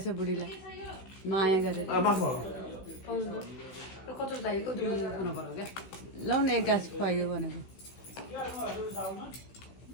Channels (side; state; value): right; late; 16 ms